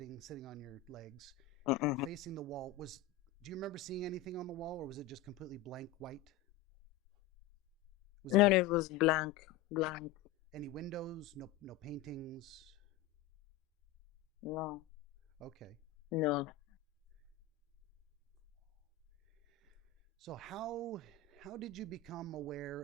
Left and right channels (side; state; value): right; quieter; 9.0 dB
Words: on your legs, Mm-mm. facing the wall. Do you remember seeing anything on the wall, or was it just completely blank white? Was No, there no, it was blank, blank. any windows? No paintings? No, Okay. no. So how how did you become aware